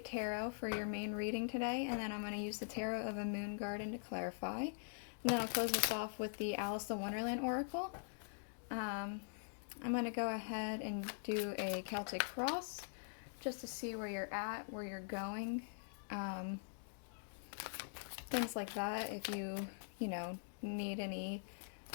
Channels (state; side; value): silent; right; digital silence